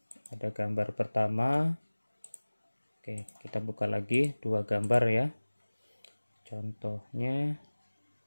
ada gambar pertama. Oke, kita buka lagi dua gambar ya. Contohnya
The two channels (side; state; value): both; inverted; correlation -1.00